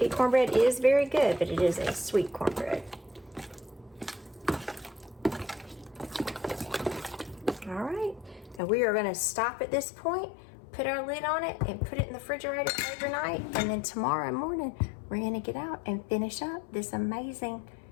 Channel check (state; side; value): drops out; right; at 8.6 s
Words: cornbread is very good, but it is a sweet cornbread. All right, now we are going to stop at this point, put our lid on it, and put it in the refrigerator overnight, and then tomorrow morning we're going to get out and finish up this amazing